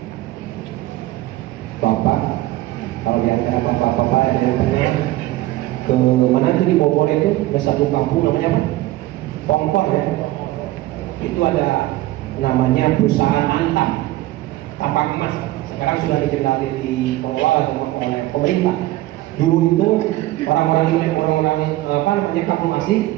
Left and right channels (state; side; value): quieter; left; 16.9 dB